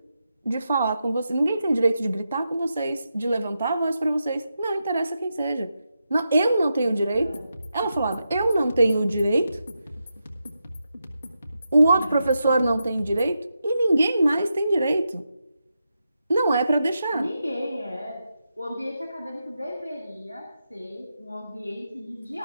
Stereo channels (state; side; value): inverted; both; correlation -0.87